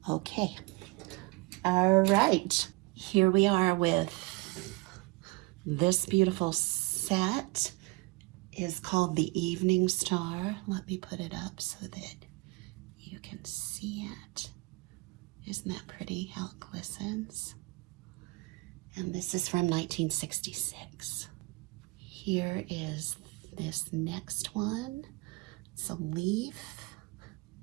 Okay. All right. Here we are with this beautiful set. Is called the Evening Star. Let me put it up so that you can see it. Isn't that pretty how it glistens? And this is from 1966. Here is this next one. It's a leaf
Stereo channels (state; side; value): quieter; left; 25.4 dB